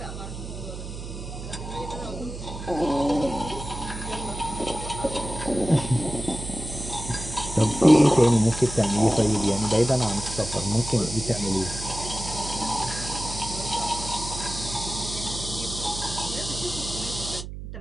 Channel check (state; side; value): noise; right; hum, 9 dB below the sound